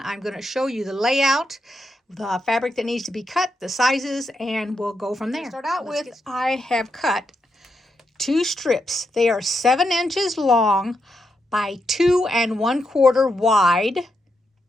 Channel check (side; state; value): both; normal; correlation 0.83